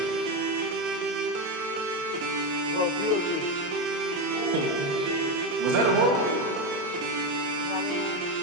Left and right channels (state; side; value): late; left; 28 ms